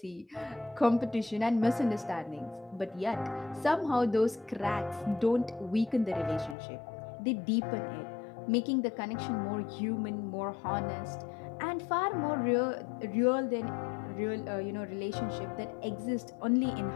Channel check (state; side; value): drops out; right; at 6.6 s